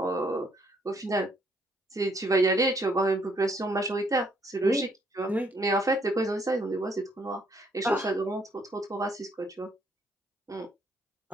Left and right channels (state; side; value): normal; both; correlation 0.68